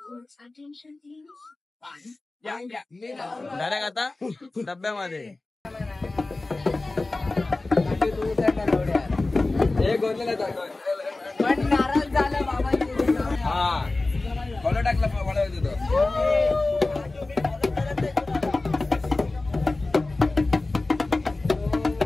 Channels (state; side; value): quieter; right; 3.2 dB